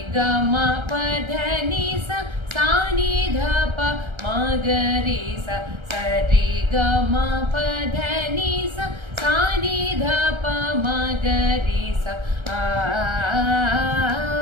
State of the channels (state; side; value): late; left; 1.3 ms